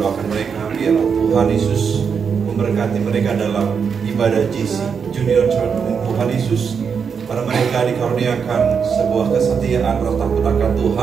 mereka biar Tuhan Yesus memberkati mereka dalam ibadah GC Junior Church. Tuhan Yesus pada mereka dikaruniakan sebuah kesetiaan rasa takut akan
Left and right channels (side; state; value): left; quieter; 6.4 dB